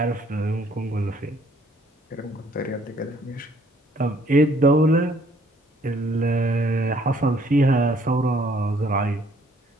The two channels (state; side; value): normal; both; correlation 0.62